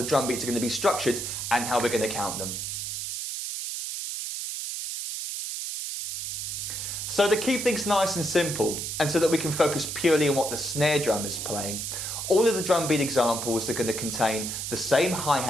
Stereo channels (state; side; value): noise; right; hiss, 4 dB below the sound